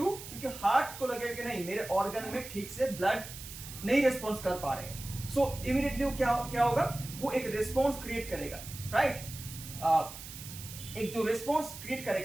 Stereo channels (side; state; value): right; noise; hiss, 12 dB below the sound